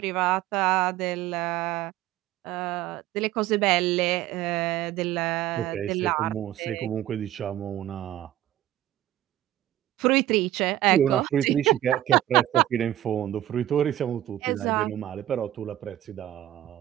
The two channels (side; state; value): left; quieter; 13.5 dB